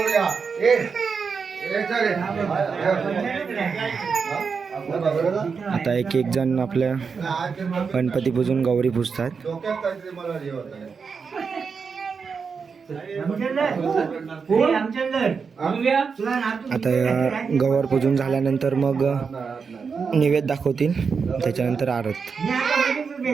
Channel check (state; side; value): quieter; left; 5.6 dB